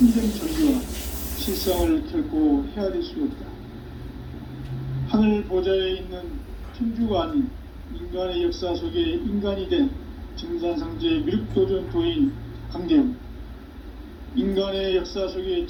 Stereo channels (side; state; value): both; identical; correlation 1.00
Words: 전기와 실상을 결코 헤아릴 수 없다. 하늘 보좌에 있는 천주가 아닌 인간의 역사 속에 인간이 된 증산상제 미륵도전 도인 강대우, 인간의 역사 속에